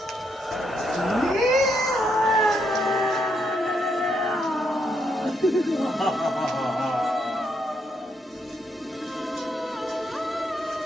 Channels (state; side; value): normal; both; correlation 0.77